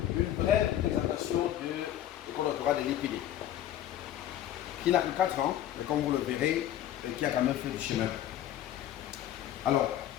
une brève présentation de l'école doctorale de l'IPD, qui n'a que 4 ans, mais comme vous le verrez, qui a quand même fait du chemin. Alors,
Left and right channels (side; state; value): right; quieter; 11.8 dB